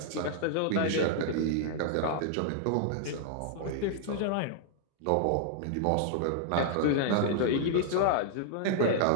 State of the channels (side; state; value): both; different; correlation -0.01